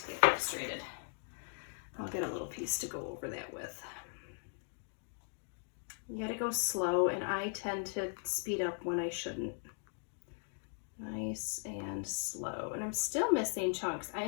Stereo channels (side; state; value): right; silent; 52 dB below the other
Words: get frustrated. I'll get a little piece to go over that with. You gotta go slow, and I tend to speed up when I shouldn't. Nice and slow. And I'm still missing chunks. I